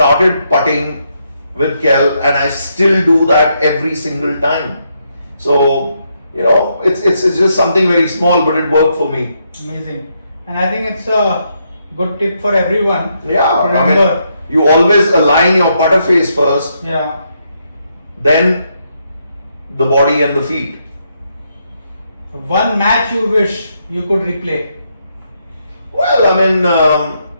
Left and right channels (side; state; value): both; inverted; correlation -0.78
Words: putting with Kel, and I still do that every single time. So, it's just something very small, but it worked for me. Amazing. And I think it's a good tip for everyone. Yeah, remember, you always align your putter face first. Yeah. Then the body and the feet. One match you wish you could replay? Well,